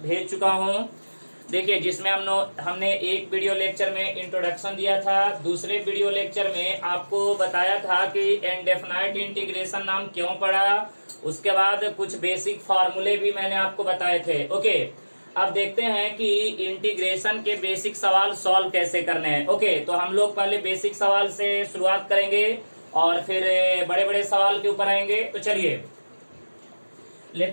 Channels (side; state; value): both; inverted; correlation -1.00